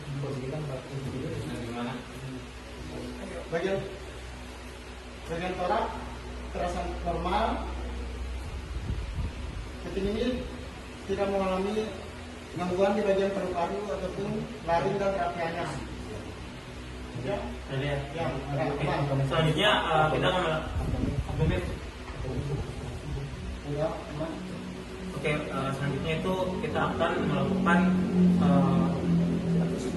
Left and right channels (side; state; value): both; identical; correlation 1.00